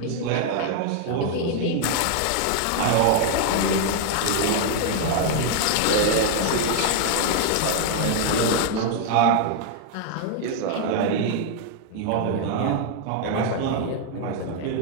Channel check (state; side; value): different; both; correlation 0.00